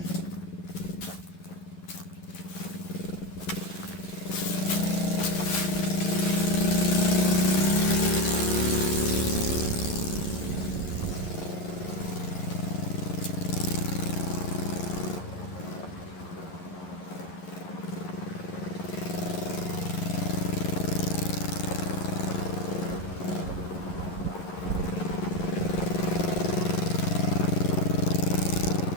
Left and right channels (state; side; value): late; right; 11 ms